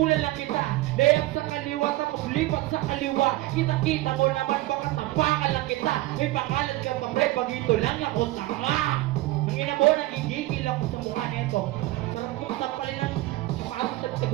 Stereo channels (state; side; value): quieter; left; 18.1 dB